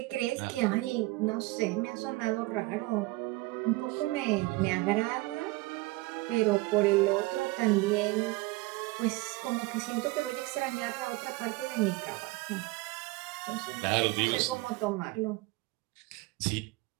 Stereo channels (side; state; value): left; quieter; 22.0 dB